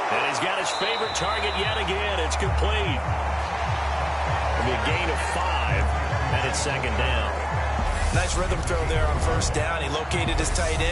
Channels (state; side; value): identical; both; correlation 1.00